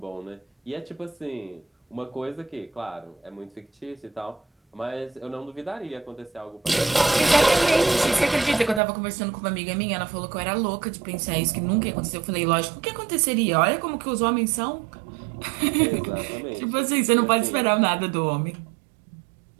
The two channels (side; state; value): left; drops out; at 8.8 s